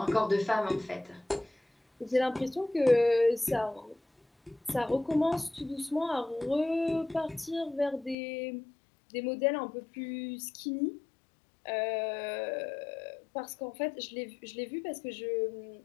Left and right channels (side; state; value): right; drops out; at 8.2 s